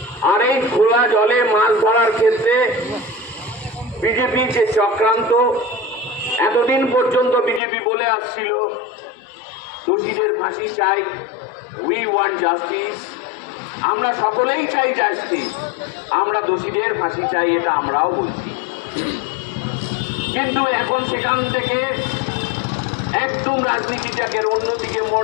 আর এই খোলা জলে মাছ ধরার ক্ষেত্রে বিজেপি যে চক্রান্ত, এতদিন পর্যন্ত বিজেপি বলে আসছিল দোষীদের ফাঁসি চাই, উই ওয়ান্ট জাস্টিস, আমরা সকলেই চাই জাস্টিস, আমরা দোষীদের ফাঁসি চাই, এটা আমরাও বলছি। কিন্তু এখন সেখান থেকে একদম রাজনীতিটাকে অন্যদিকে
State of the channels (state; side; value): drops out; right; at 7.6 s